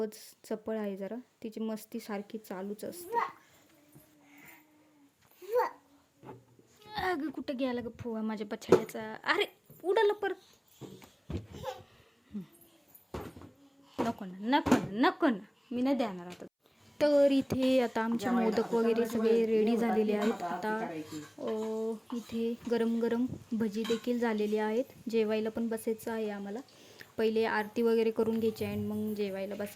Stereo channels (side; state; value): both; identical; correlation 1.00